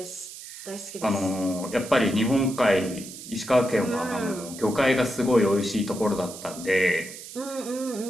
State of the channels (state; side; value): noise; right; hiss, 13 dB below the sound